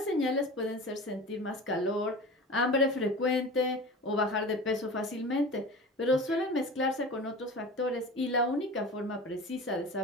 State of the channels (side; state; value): both; normal; correlation 0.34